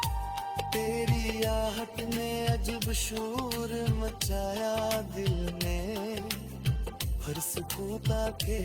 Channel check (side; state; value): both; identical; correlation 1.00